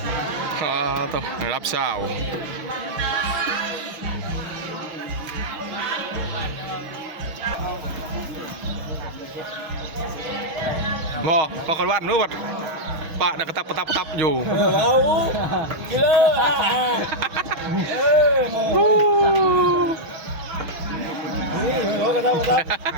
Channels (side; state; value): left; late; 6.3 ms